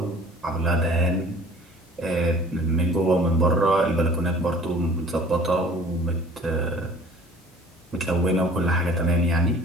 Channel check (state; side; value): normal; both; correlation 0.48